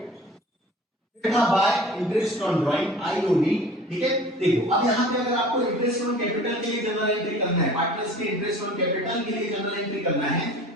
फिर था bye interest on drawing IOD, ठीक है। देखो अब यहां पे अगर आपको इंटरेस्ट ऑन कैपिटल के लिए जनरल एंट्री करना है, पार्टनर्स के इंटरेस्ट ऑन कैपिटल के लिए जनरल एंट्री करना है,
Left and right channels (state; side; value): normal; both; correlation 0.44